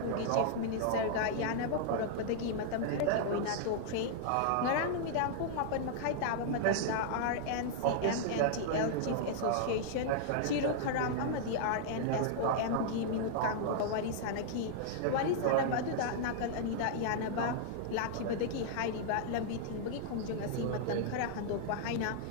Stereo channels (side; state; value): both; different; correlation -0.01